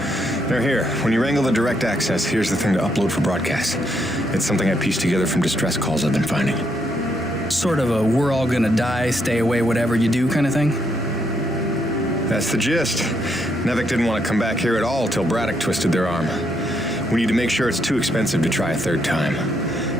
They're here. When you wrangle the direct access, here's the thing to upload for broadcast. It's something I pieced together from distress calls I've been finding. Sort of a we're all gonna die, stay away, whatever you do kind of thing? That's the gist. Nevek didn't want to come back here at all till Braddock twisted their arm. We need to make sure it's too expensive to try a third time.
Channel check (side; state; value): both; normal; correlation 0.76